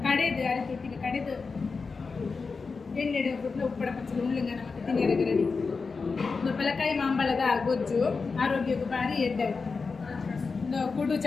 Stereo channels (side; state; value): right; quieter; 4.6 dB